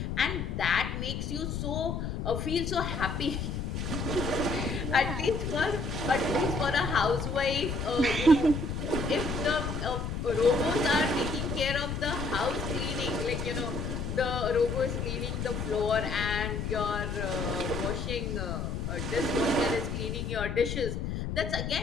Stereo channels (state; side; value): noise; left; rumble, 3 dB below the sound